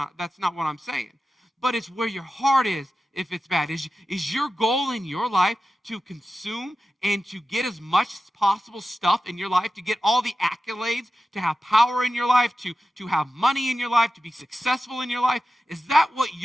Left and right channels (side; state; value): both; normal; correlation 0.93